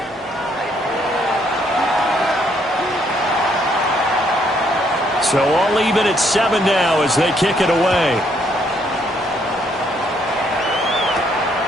So all even at 7 now as they kick it away.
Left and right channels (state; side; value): normal; both; correlation 0.70